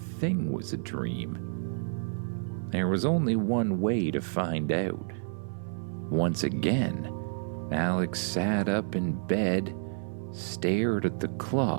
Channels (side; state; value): left; silent; 58 dB below the other